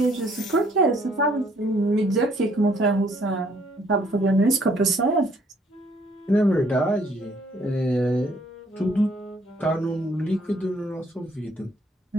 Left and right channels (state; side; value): normal; both; correlation 0.64